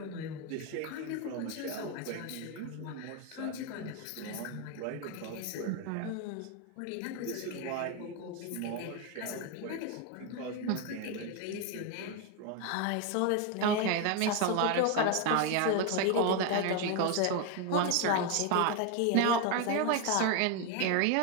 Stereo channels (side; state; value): both; different; correlation 0.01